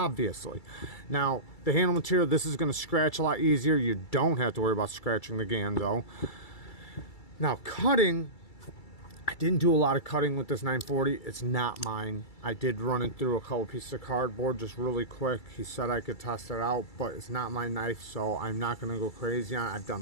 Now, the handle material, this is going to scratch a lot easier. You don't have to worry about scratching the Ganzo. Now, cutting, I didn't do a lot of cutting with this 940. It's not mine. I did run it through a couple pieces of cardboard just really quick. He said I could test it out, but it's not my knife, so I'm not going to go crazy on it. I've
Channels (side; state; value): right; late; 2.3 ms